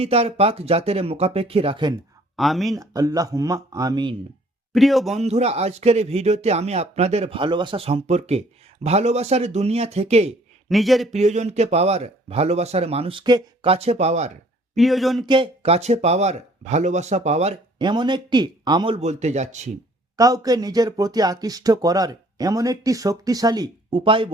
তার পাক জাতের মোকাপেক্ষী রাখেন। আমিন আল্লাহুম্মা আমিন। প্রিয় বন্ধুরা, আজকের এই ভিডিওতে আমি আপনাদের ভালোবাসা সম্পর্কে, ভালোবাসার দুনিয়া থেকে নিজের প্রিয়জনকে পাওয়ার, ভালোবাসার মানুষকে কাছে পাওয়ার, প্রিয়জনকে কাছে পাওয়ার, ভালোবাসা পাওয়ার এমন একটি আমল বলতে যাচ্ছি। কাউকে নিজের প্রতি আকৃষ্ট করার এমন একটি শক্তিশালী উপায়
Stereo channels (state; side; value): normal; both; correlation 0.58